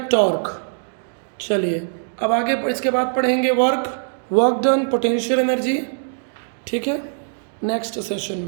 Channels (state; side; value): silent; left; digital silence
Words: टॉर्क। चलिए अब आगे इसके बाद पढ़ेंगे वर्क डन, पोटेंशियल एनर्जी, ठीक है, नेक्स्ट सेशन